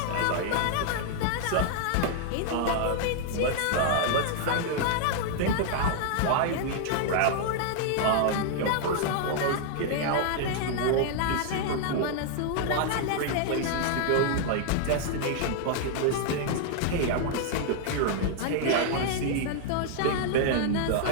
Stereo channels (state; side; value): different; both; correlation 0.00